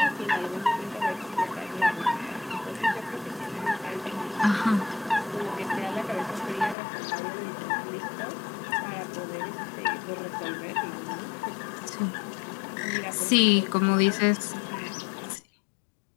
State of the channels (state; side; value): drops out; right; at 6.8 s